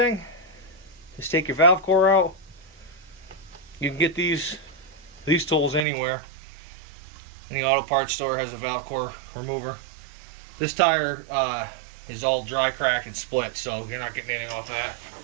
is take your valve core out. You can get these tools anywhere. Any auto parts store has a valve core remover. This tire is all dry, cracked, and split, so you're not getting anything off that.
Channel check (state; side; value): drops out; left; at 5.9 s